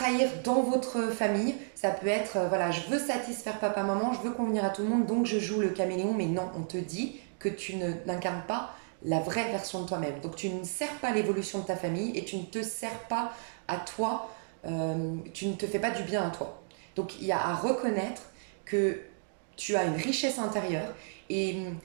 dans votre famille. Ça peut être, voilà, je veux satisfaire papa, maman, je veux convenir à tout le monde, donc je joue le caméléon, mais non, on te dit que tu n'incarnes pas la vraie version de toi-même. Donc tu ne sers pas l'évolution de ta famille et tu ne te sers pas à toi, tu ne te fais pas du bien à toi. Donc il y a à reconnaître que tu as une richesse intérieure et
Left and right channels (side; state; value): left; silent; digital silence